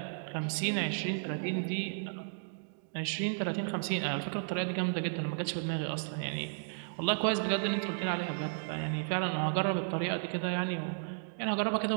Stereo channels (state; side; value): silent; left; digital silence